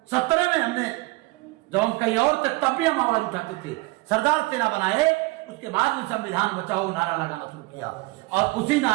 17 में हमने, जब हम कहीं और थे तब भी हम आवाज उठाते थे। सरदार सेना बनाए, उसके बाद में संविधान बचाओ नारा लगाना शुरू किया, और उसी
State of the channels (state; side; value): quieter; left; 22.4 dB